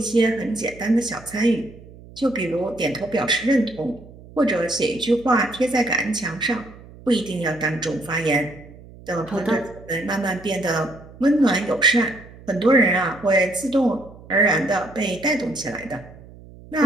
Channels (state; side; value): noise; right; hum, 20 dB below the sound